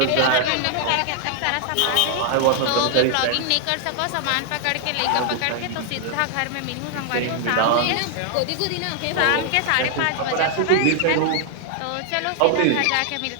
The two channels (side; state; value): both; different; correlation 0.00